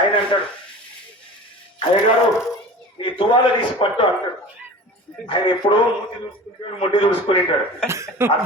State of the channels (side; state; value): both; normal; correlation 0.37